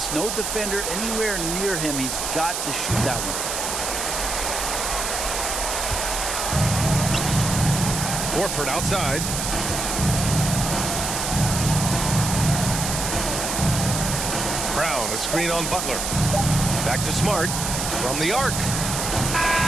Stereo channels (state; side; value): noise; right; hiss, 2 dB below the sound